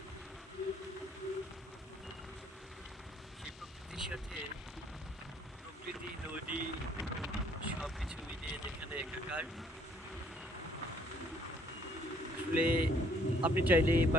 সেই প্রকৃতির সাথে প্রকৃতি, নদী সব কিছু মিলিয়ে যেখানে একাকার। আসলে আপনি চাইলে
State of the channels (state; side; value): normal; both; correlation 0.63